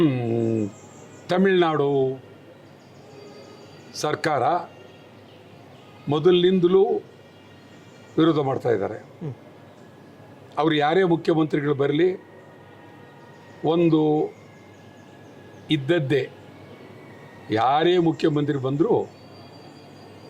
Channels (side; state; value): both; identical; correlation 1.00